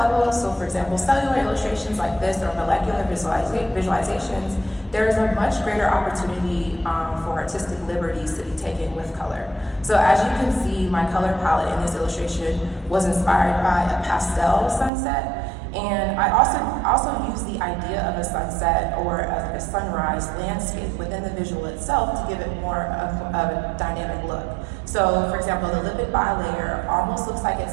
so for example, cellular illustrations like this or molecular visualizations, there is a much greater opportunity for artistic liberties to be taken with color. So as you can see, my color palette in this illustration was inspired by a pastel sunset. And I also use the idea of a sunset or a sunrise landscape within the visual itself to give it more of a dynamic look. So, for example, the lipid bilayer almost looks like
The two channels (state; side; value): drops out; left; at 14.9 s